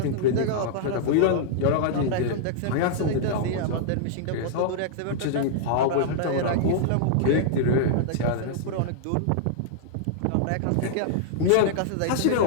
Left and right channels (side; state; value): both; different; correlation -0.01